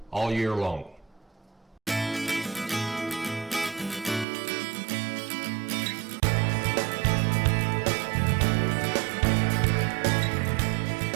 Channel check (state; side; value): drops out; left; at 4.2 s